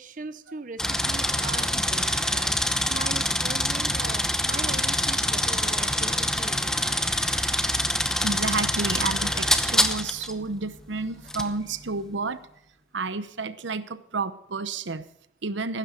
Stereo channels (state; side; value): normal; both; correlation 0.51